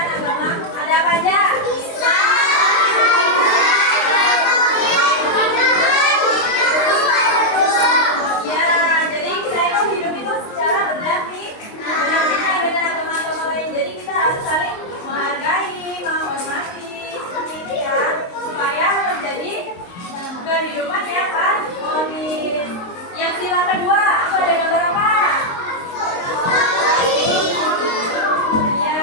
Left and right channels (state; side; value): late; right; 23 ms